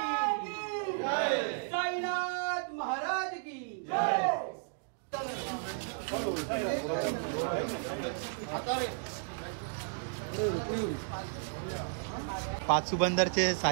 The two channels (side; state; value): left; silent; digital silence